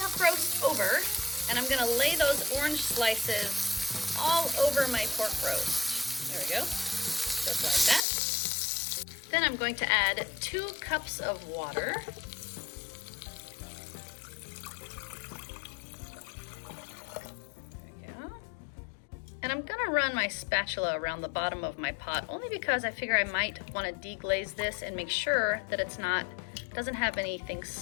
roast over, and I'm gonna lay those orange slices all over my pork roast. There we go, just like that. Then I'm going to add 2 cups of water. And I'm gonna run my spatula around the bottom of my pot only because I figure I might want to deglaze this and make sure that doesn't have anything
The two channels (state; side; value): drops out; right; at 8.1 s